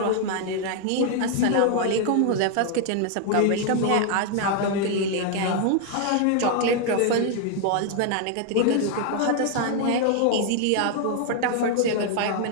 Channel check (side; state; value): both; different; correlation 0.00